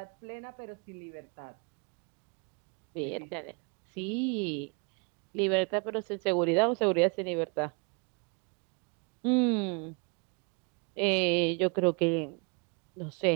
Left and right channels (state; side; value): quieter; left; 34.2 dB